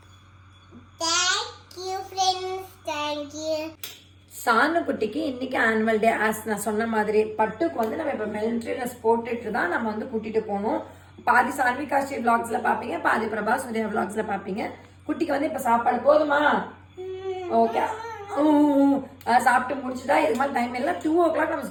சானு குட்டிக்கு இன்னைக்கு ஆனுவல் டே. ஆஸ் நான் சொன்ன மாதிரி பட்டுக்கு வந்து நம்ம இப்ப மிலிட்டரி ட்ரெஸ் போட்டுட்டு தான் நம்ம வந்து கூட்டிட்டு போகணும். பாதி சான்விகா ஸ்ரீ விளாக்ஸ்ல பாப்பீங்க, பாதி பிரபா சூர்யா விளாக்ஸ்ல பாப்பீங்க. குட்டிக்கு வந்து இப்ப சாப்பாடு போதுமா? ஓகே, சாப்பிட்டு முடிச்சுட்டா. இது மாதிரி டைம் இல்லை, 2 o'clock நம்ம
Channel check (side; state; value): both; identical; correlation 1.00